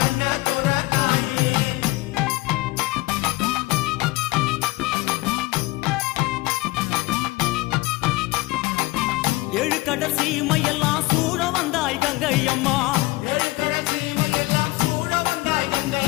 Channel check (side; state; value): right; quieter; 20.9 dB